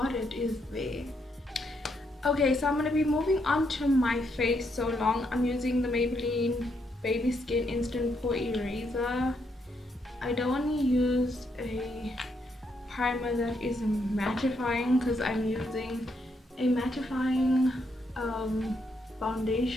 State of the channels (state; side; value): normal; both; correlation 0.77